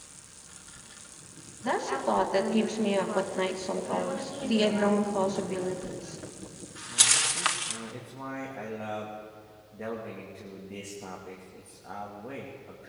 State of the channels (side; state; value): both; identical; correlation 1.00